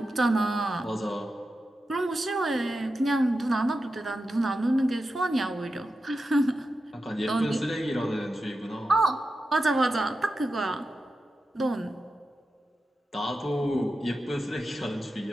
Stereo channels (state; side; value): normal; both; correlation 0.90